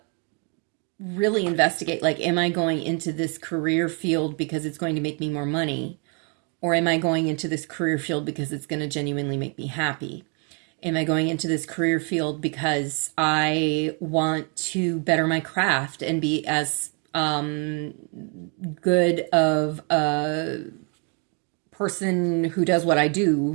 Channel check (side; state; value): left; quieter; 37.1 dB